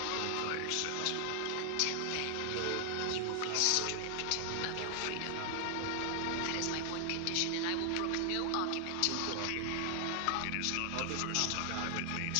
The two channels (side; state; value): both; different; correlation 0.00